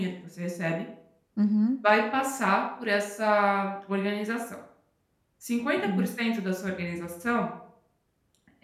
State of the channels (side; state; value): both; identical; correlation 1.00